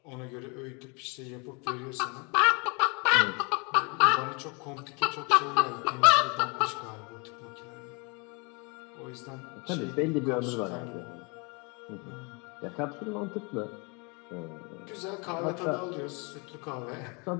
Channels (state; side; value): quieter; right; 31.9 dB